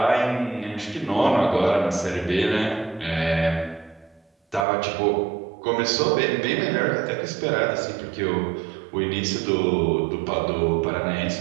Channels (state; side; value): drops out; left; at 4.7 s